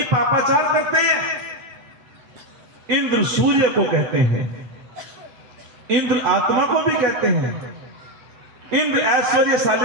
पापाचार करते हैं। इंद्र सूर्य को कहते हैं, इंद्र आत्मा को भी कहते हैं, इंद्र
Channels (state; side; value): late; left; 7.9 ms